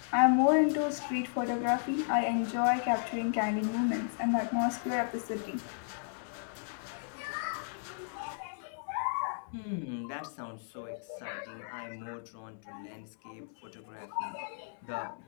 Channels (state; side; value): silent; right; 55 dB below the other